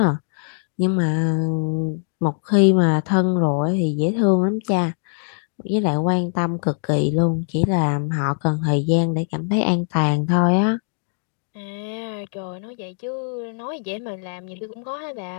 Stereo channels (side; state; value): right; silent; digital silence